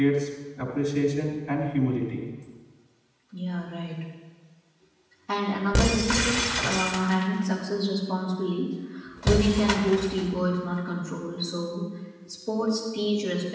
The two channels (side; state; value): both; identical; correlation 1.00